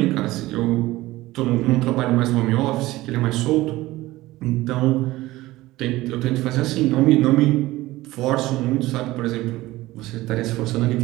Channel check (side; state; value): left; quieter; 17.9 dB